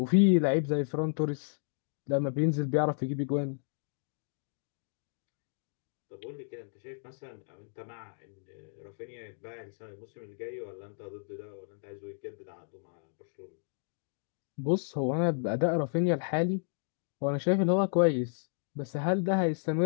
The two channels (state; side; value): silent; right; digital silence